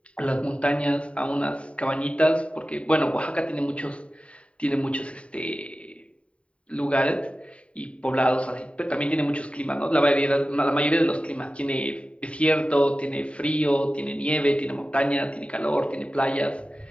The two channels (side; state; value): right; late; 0.062 ms